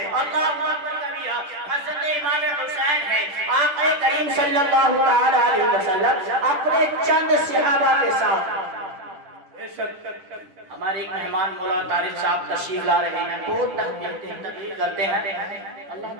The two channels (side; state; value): left; late; 10 ms